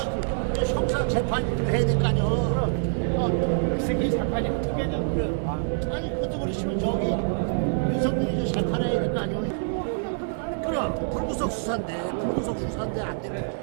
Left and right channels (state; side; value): silent; left; 60 dB below the other